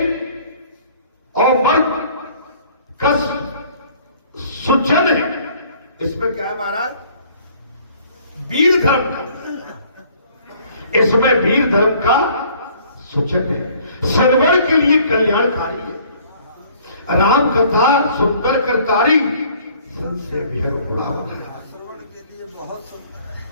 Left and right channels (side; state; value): both; inverted; correlation -0.56